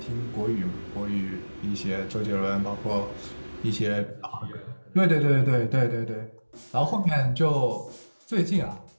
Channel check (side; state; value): both; inverted; correlation -1.00